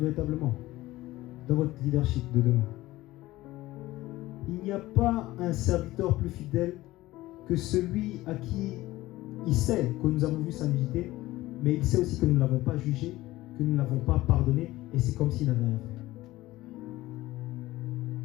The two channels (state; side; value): quieter; right; 17.5 dB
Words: dans votre leadership de demain. Il n'y a pas un serviteur plus fidèle que celui à qui il sait que nous avons vu sa nudité, mais il sait aussi que nous ne l'avons pas jugé, que nous ne l'avons pas pardonné, et c'est comme s'il n'avait rien fait.